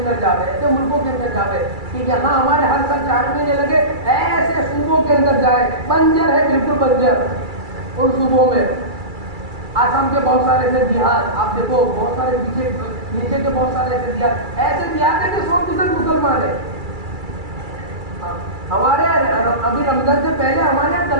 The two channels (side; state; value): left; late; 2.3 ms